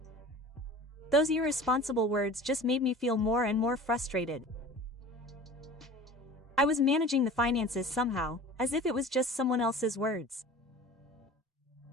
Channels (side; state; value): both; normal; correlation 0.40